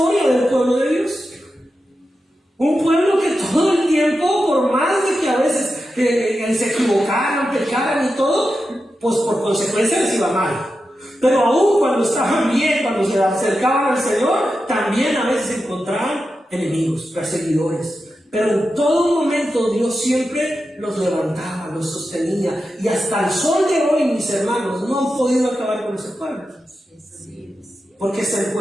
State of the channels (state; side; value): normal; both; correlation 0.90